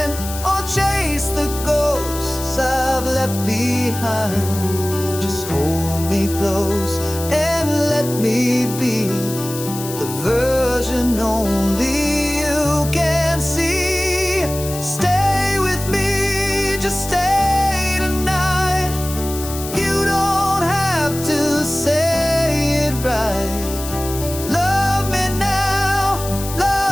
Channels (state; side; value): noise; left; hiss, 10 dB below the sound